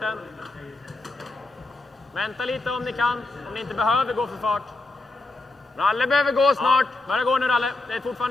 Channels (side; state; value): right; quieter; 3.1 dB